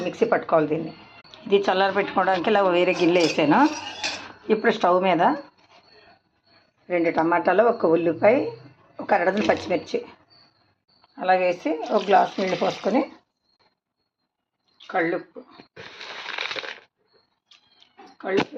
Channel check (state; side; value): identical; both; correlation 1.00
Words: మిక్సీ పట్టుకోవాలి దీన్ని. ఇది చల్లారి పెట్టుకోవడానికి ఇలా వేరే గిన్నె వేసాను. ఇప్పుడు స్టవ్ మీద 2 టమాటాలు, 1 ఉల్లిపాయ, ఒక అరడజన్ పచ్చిమిర్చి అలా వేసి ఒక గ్లాస్ నీళ్ళు పోసుకొని కళ్ళుప్పు